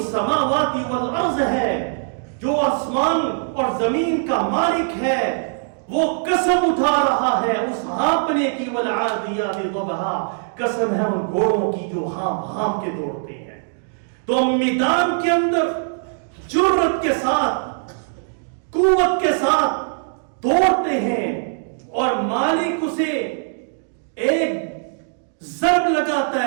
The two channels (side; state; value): left; silent; digital silence